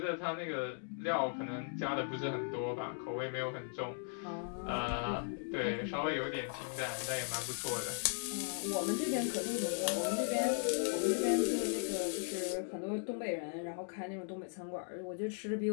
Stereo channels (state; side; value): silent; right; digital silence